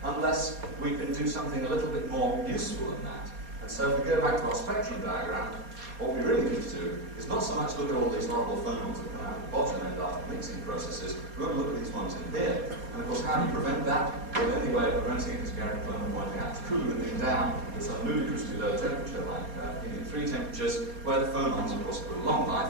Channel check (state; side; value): late; left; 4.2 ms